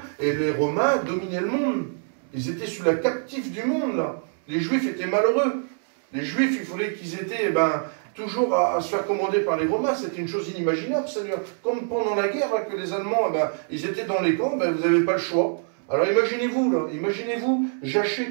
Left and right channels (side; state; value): left; silent; 62 dB below the other